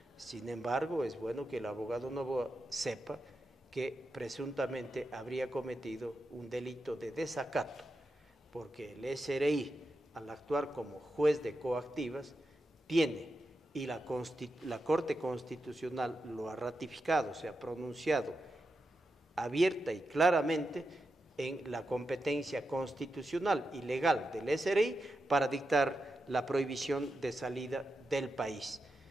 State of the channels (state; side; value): normal; both; correlation 0.88